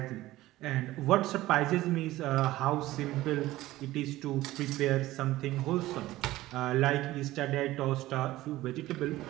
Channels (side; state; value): left; quieter; 16.6 dB